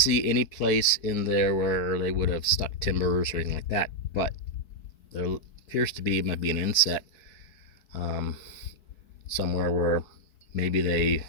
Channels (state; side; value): late; right; 4.6 ms